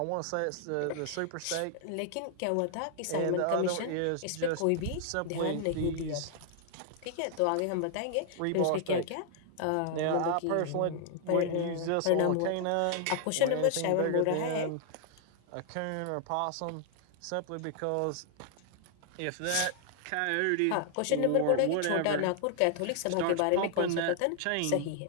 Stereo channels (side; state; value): both; different; correlation 0.00